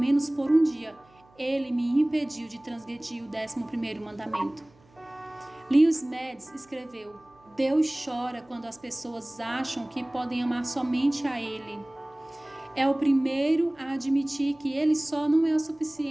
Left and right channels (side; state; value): right; noise; hum, 30 dB below the sound